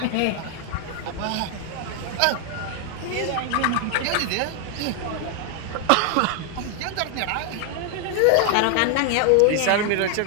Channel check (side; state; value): both; different; correlation 0.00